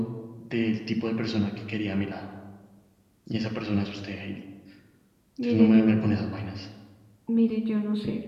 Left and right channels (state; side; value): identical; both; correlation 1.00